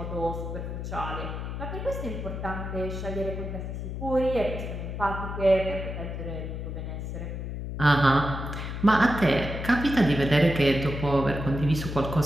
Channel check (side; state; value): left; noise; hum, 6 dB below the sound